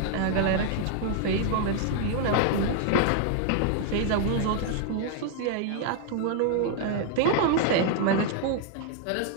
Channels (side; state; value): both; different; correlation 0.00